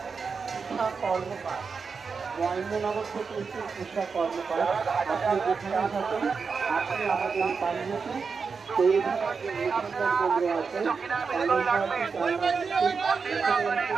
কর্মকার মহেন্দ্রনগর থেকে একটি উষা কর্মকার, আপনি যেখানে থাকেন আপনি আমাদের পাঞ্জাবি পৌরসভার যে নিবন্ধন কেন্দ্র আছে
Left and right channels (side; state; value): left; quieter; 5.3 dB